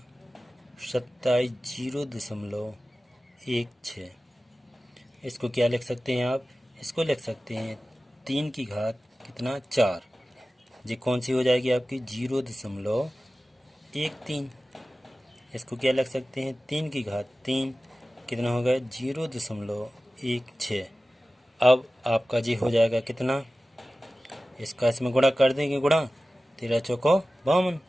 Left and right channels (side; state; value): both; normal; correlation 0.96